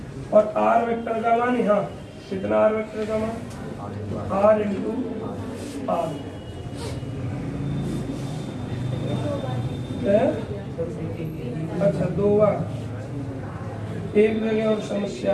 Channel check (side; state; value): both; identical; correlation 1.00